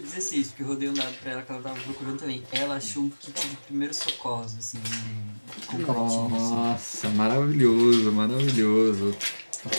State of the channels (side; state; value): both; inverted; correlation -1.00